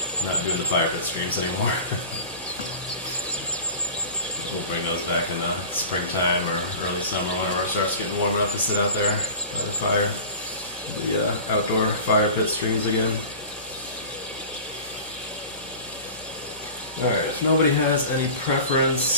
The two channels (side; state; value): both; inverted; correlation -0.36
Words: not doing the fire pit streams anymore. We'll bring those back in the springtime or early summer whenever it starts getting warm enough to sit out there by the fire. The outdoor fire pit streams again. Alright, if nobody has any